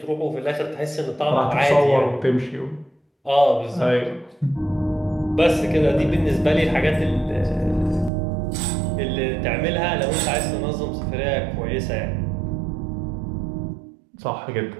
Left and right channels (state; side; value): drops out; left; at 8.1 s